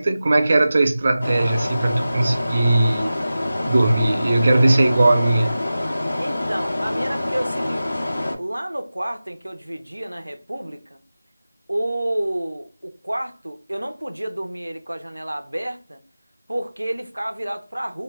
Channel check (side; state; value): both; inverted; correlation -0.95